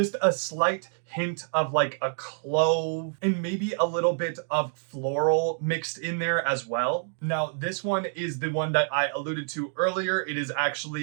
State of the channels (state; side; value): silent; left; 60 dB below the other